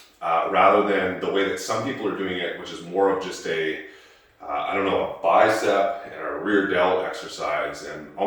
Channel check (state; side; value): identical; both; correlation 1.00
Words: rather than the way that some people are doing it, which is more of just a bicep and a rear delt exercise and